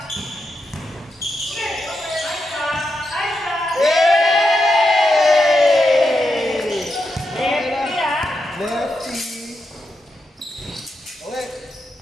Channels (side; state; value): both; normal; correlation 0.85